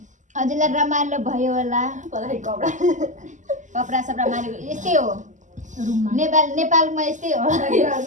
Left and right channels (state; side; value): late; left; 0.36 ms